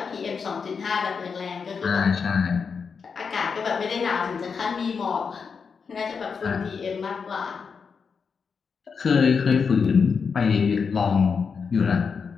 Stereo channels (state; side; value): quieter; right; 5.7 dB